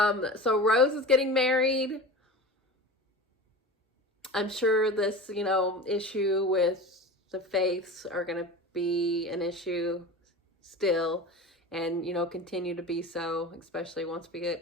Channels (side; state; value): both; normal; correlation 0.33